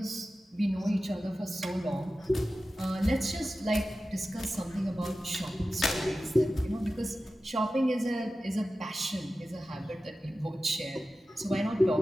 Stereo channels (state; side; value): normal; both; correlation 0.94